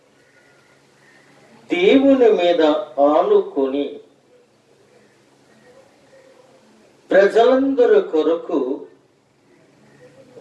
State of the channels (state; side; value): identical; both; correlation 1.00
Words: దేవుని మీద ఆనుకొని ప్రజలందరి కొరకు